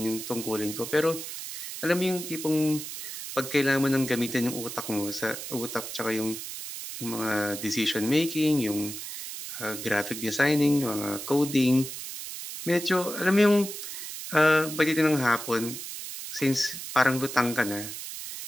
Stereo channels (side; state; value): right; noise; hiss, 8 dB below the sound